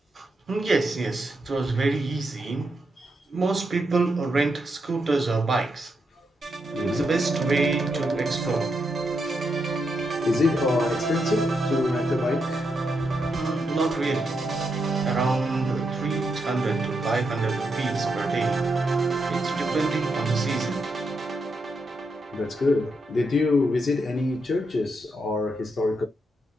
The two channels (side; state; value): both; normal; correlation 0.82